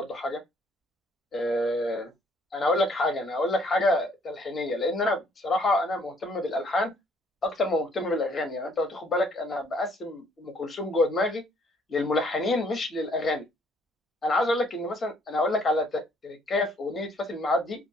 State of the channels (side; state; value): both; normal; correlation 0.64